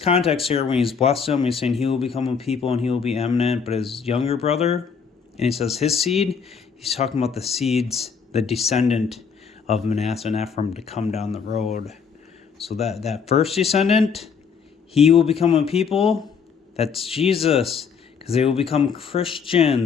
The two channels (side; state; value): right; quieter; 6.2 dB